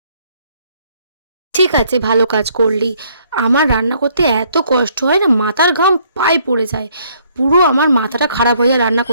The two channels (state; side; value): inverted; both; correlation -0.65